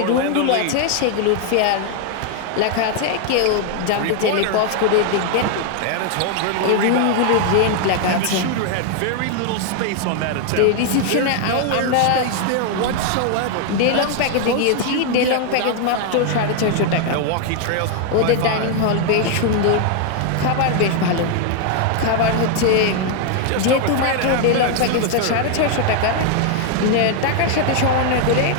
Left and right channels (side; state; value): both; different; correlation 0.00